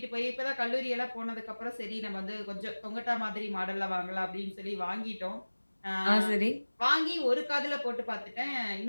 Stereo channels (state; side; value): inverted; both; correlation -1.00